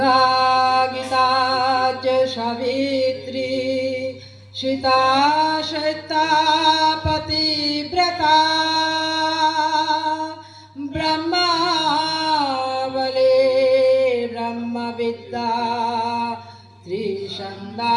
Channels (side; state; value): both; identical; correlation 1.00